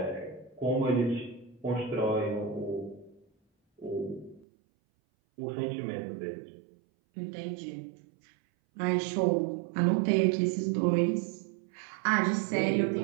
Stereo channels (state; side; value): drops out; left; at 4.5 s